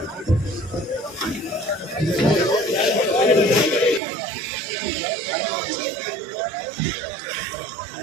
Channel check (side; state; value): left; drops out; at 4.0 s